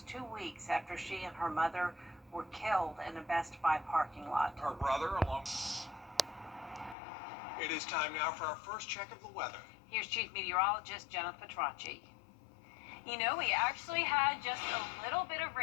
2 weeks after she and her mother were killed in a Best Buy parking lot. Her brother along. It is time now for our first check of the weather. Here's Chief Meteorologist Jennifer Petracci. You know, we actually had just a little bit of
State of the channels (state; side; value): drops out; right; at 7.0 s